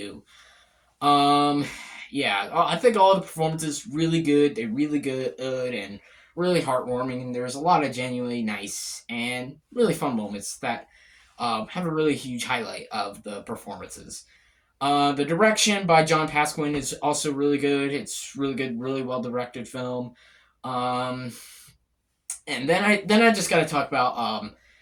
Um, yeah, I think all the performances really good. They're really good and really heartwarming. And there's a lot of genuinely nice and really fun moments that have a really huge highlight of the performances. The direction by John Pasquin is also really good. It's really good, really well directed film. Um, and then I just got to talk about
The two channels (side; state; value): both; identical; correlation 1.00